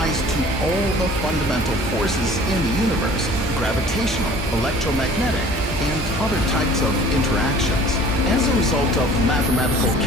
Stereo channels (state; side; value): normal; both; correlation 0.48